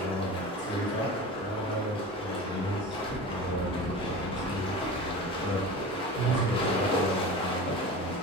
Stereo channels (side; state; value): both; normal; correlation 0.32